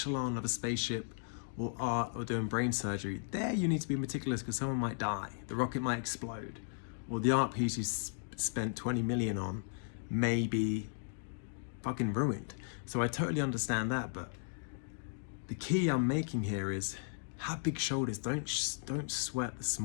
of a spaceship or art or doing brain surgery, there you need to be meticulous because someone might die, the rocket might explode, or the art piece you spent 20 million on may be fucking ruined. So I totally understand that, but the key I'm making here is have big shoulders. Don't sweat the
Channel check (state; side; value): silent; right; digital silence